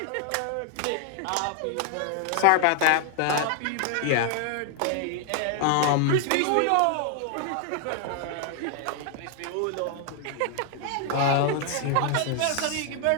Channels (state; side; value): different; both; correlation 0.00